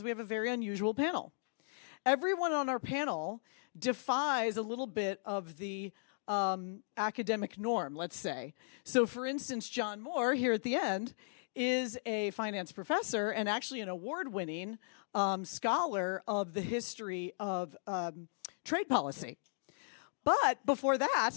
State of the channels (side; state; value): right; silent; digital silence